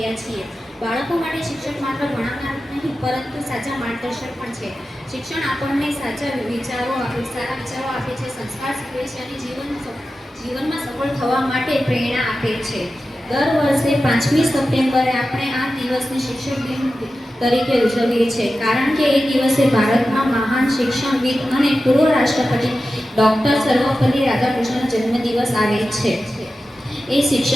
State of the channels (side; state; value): both; normal; correlation 0.93